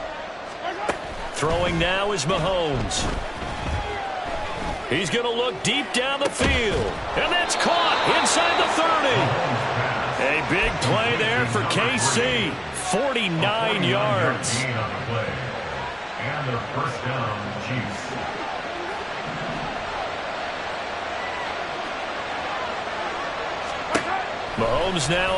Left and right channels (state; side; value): identical; both; correlation 1.00